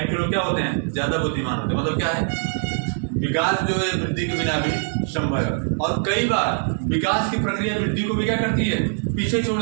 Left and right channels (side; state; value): left; silent; 61 dB below the other